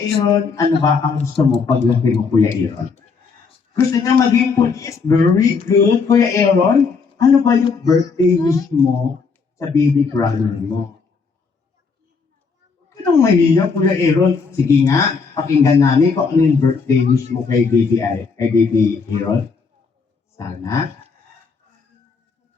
Aaron, ano ba ang gusto mo paglaki mo, Kuya Aaron? Gusto niya maging police? Very good, Kuya Aaron. Ano ba yung birthday wish mo sa baby brother mo? Anong mahiya, Kuya Aaron? Sige nga, pakinggan namin kung ano yung birthday wish mo kay baby Aaron. Sana.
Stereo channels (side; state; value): right; quieter; 5.1 dB